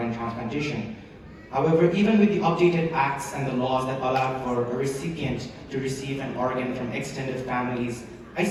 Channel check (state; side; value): identical; both; correlation 1.00